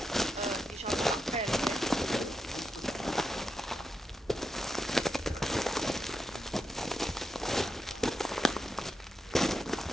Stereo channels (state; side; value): normal; both; correlation 0.87